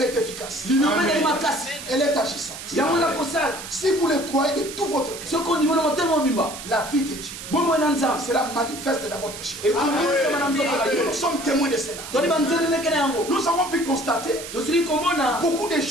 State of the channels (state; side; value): noise; right; hiss, 11 dB below the sound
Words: est efficace. Elle est agissante. Si vous le croyez de tout votre cœur, la vie de Dieu sera manifeste dans votre chair. Nous sommes témoins de cela. Nous avons pu constater beaucoup de